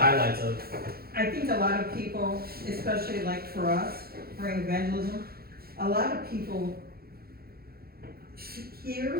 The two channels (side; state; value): left; late; 0.44 ms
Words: of, I think a lot of people, especially like for us, for evangelism, a lot of people